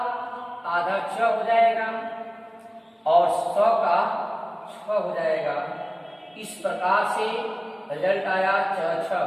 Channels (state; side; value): identical; both; correlation 1.00